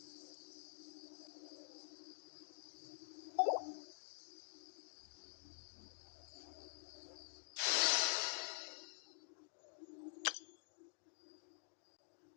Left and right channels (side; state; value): right; silent; digital silence